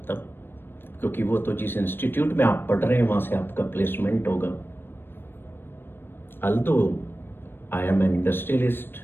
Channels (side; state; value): right; late; 0.10 ms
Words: क्योंकि वो तो जिस इंस्टीट्यूट में आप पढ़ रहे हैं वहां से आपका प्लेसमेंट होगा। although I am an industrialist,